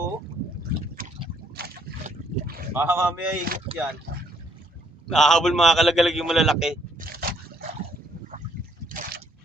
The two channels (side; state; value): both; normal; correlation 0.67